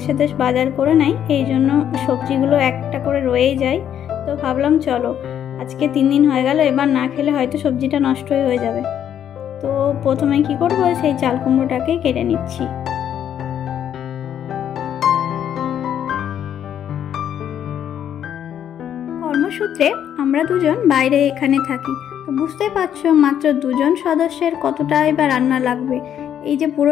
বাজার করে নেয়, এই জন্য সবজিগুলো একটা করে রয়েই যায়। তো ভাবলাম চলো আজকে 3 দিন হয়ে গেল, এবার না খেলে হয়তো সবজিটা নষ্টই হয়ে যাবে। তো প্রথমে কি করবো, সেই চাল কুমড়োটাকে কেটে নিচ্ছি। কর্মসূত্রে আমরা দুজন বাইরে এখানে থাকি, তো বুঝতেই পারছো মাত্র 2 জন সদস্যের কতটা এবার রান্না লাগবে। এই যে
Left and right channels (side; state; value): right; quieter; 9.7 dB